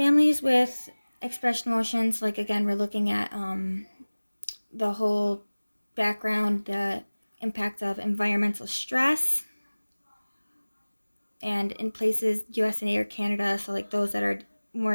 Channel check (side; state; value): both; inverted; correlation -1.00